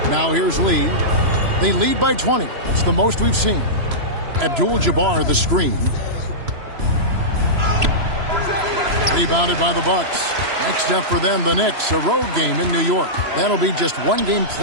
Now here's Lee. They lead by 20. That's the most we've seen. Abdul-Jabbar the screen. Rebounded by the Bucks. Next up for them, the Knicks, a road game in New York. That'll be just one game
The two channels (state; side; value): late; left; 3.0 ms